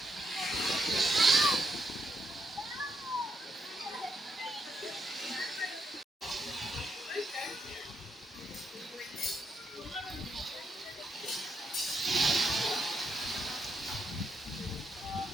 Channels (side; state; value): both; normal; correlation 0.79